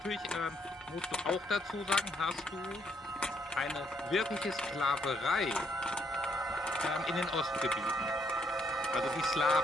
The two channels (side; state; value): both; normal; correlation 0.72